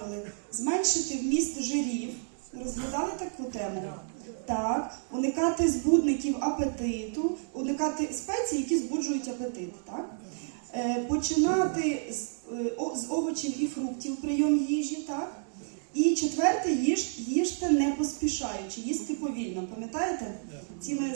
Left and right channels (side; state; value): left; silent; digital silence